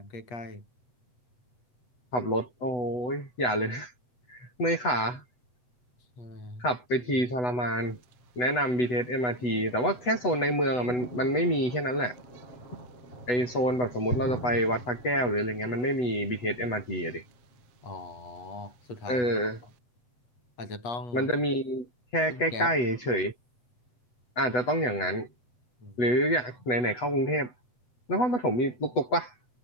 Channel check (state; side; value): late; right; 8.1 ms